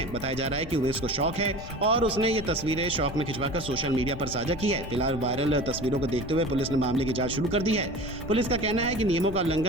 बताया जा रहा है कि उमेश को शौक है और उसने ये तस्वीरें शौक में खिंचवाकर सोशल मीडिया पर साझा की है। फिलहाल वायरल तस्वीरों को देखते हुए पुलिस ने मामले की जांच शुरू कर दी है। पुलिस का कहना है कि नियमों का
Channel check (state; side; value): noise; left; rumble, 11 dB below the sound